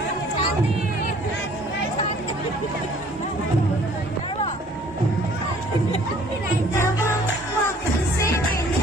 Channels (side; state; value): both; normal; correlation 0.55